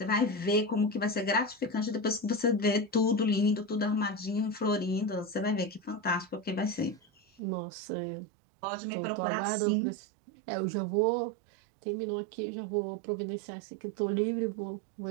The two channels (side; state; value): left; drops out; at 7.4 s